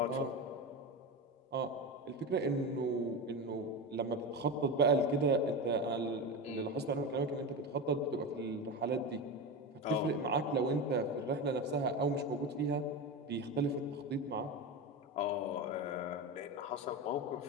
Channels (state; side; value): normal; both; correlation 0.20